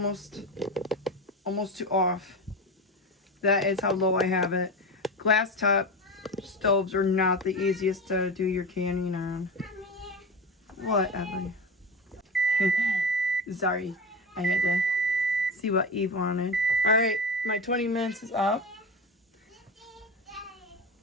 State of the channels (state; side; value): normal; both; correlation 0.24